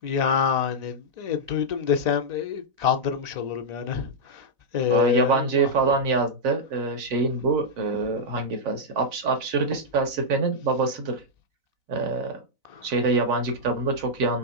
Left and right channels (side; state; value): left; late; 4.0 ms